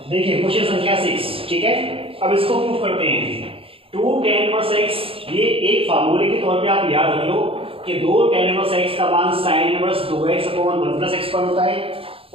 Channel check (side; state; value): left; late; 0.27 ms